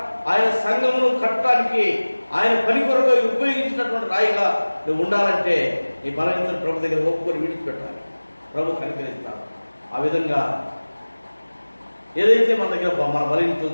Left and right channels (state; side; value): inverted; both; correlation -1.00